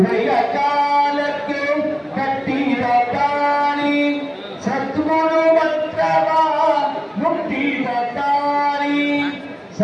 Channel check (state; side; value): identical; both; correlation 1.00